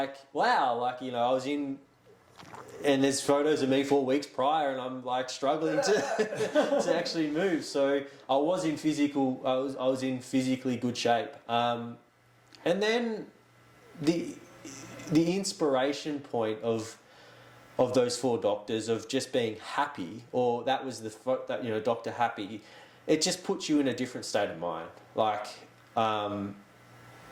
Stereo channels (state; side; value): identical; both; correlation 1.00